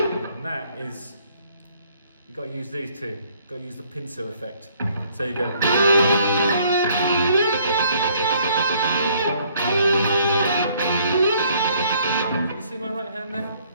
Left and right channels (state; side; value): inverted; both; correlation -0.63